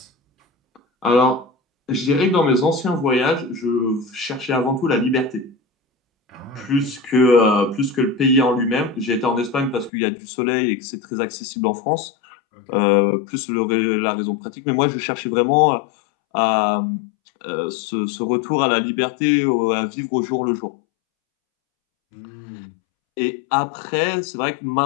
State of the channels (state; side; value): drops out; right; at 9.9 s